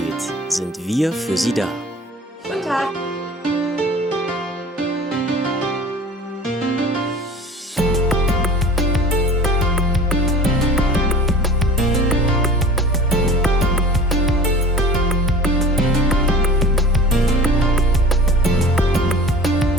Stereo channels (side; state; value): both; normal; correlation 0.41